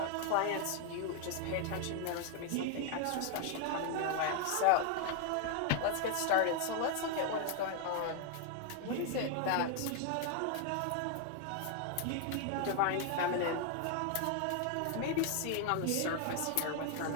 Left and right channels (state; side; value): different; both; correlation 0.00